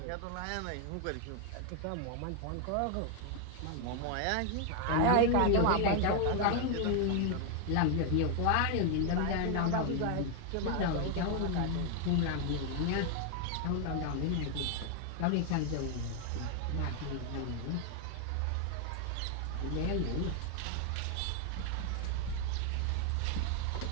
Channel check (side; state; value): both; different; correlation 0.01